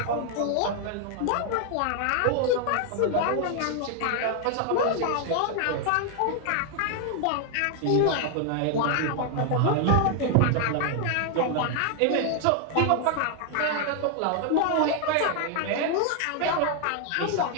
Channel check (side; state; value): both; different; correlation 0.00